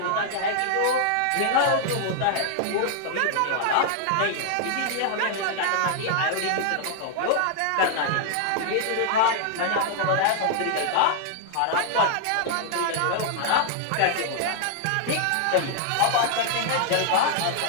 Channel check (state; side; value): different; both; correlation -0.01